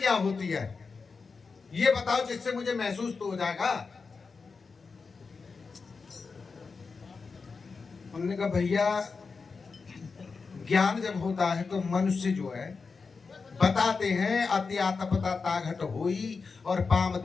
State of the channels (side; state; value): right; quieter; 4.7 dB